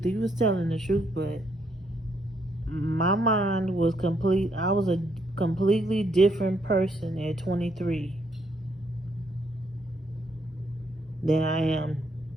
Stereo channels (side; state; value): both; normal; correlation 0.73